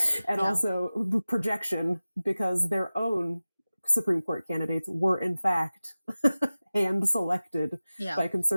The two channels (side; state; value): both; inverted; correlation -0.97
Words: and also projection, because their own Supreme Court candidates were in fact hand selected by